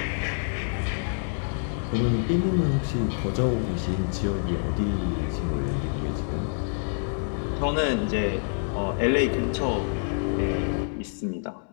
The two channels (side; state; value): right; silent; digital silence